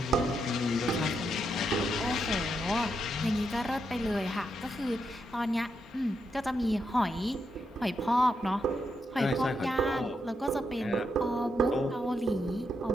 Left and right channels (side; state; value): both; normal; correlation 0.82